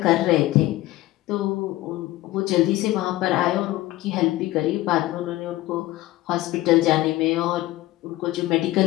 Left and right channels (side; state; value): right; quieter; 17.0 dB